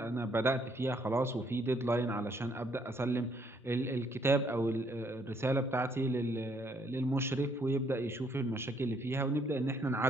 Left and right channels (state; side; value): normal; both; correlation 0.68